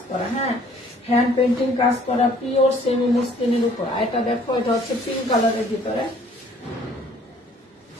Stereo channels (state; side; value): normal; both; correlation 0.57